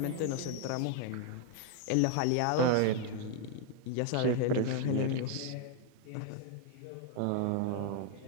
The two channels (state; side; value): different; both; correlation 0.00